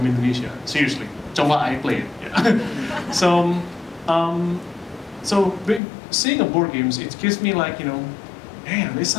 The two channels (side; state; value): right; drops out; at 5.8 s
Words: Indonesia. Seriously, Congklak I played. Yeah. So seeing a board games, it gives me like, man, it's